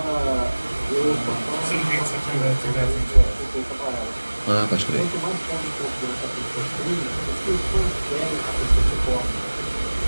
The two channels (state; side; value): inverted; both; correlation -1.00